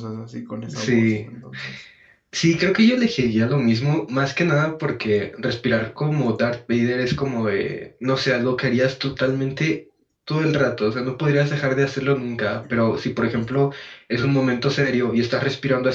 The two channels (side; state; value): both; identical; correlation 1.00